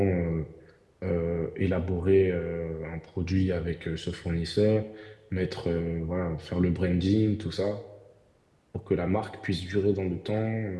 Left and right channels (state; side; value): identical; both; correlation 1.00